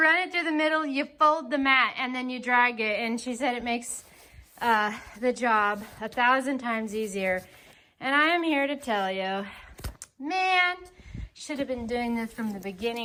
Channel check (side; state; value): both; identical; correlation 1.00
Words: it through the middle, you fold the mat, and then you drag it. And she said it makes the job 1,000 times easier. And I am here to tell you, man, should have been doing this from the